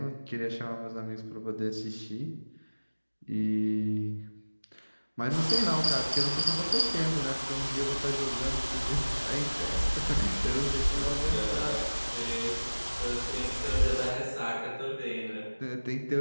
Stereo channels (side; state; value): both; inverted; correlation -1.00